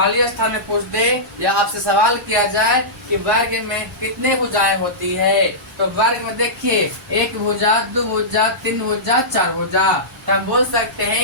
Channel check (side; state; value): both; normal; correlation -0.16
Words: स्थान में पूछ दे या आपसे सवाल किया जाए कि वर्ग में कितने भुजाएं होती है, तो वर्ग में देखिए, एक भुजा, दो भुजा, तीन भुजा, चार भुजा। तो हम बोल सकते